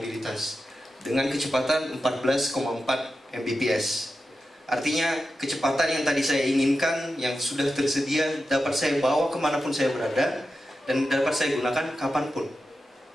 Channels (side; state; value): both; normal; correlation 0.91